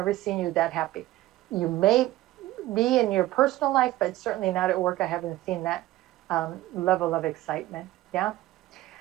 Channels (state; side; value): quieter; left; 16.2 dB